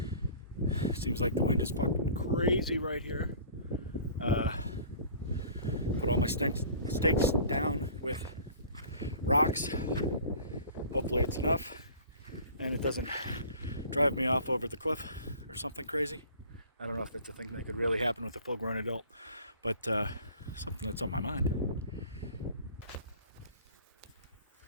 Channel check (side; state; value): both; inverted; correlation -0.46